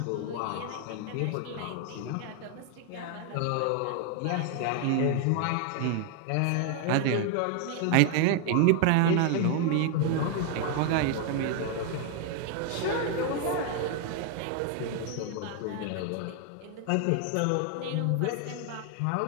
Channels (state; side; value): different; both; correlation 0.00